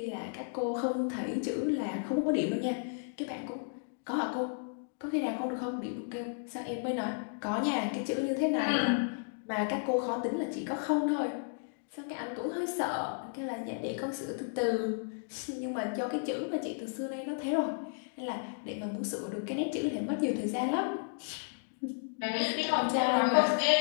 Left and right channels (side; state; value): right; silent; digital silence